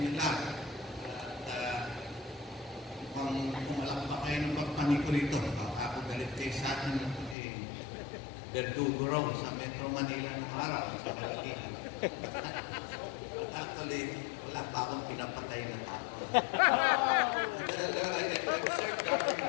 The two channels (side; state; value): right; drops out; at 7.4 s